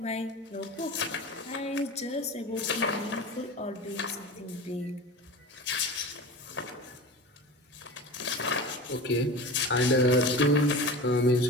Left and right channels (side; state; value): both; normal; correlation 0.32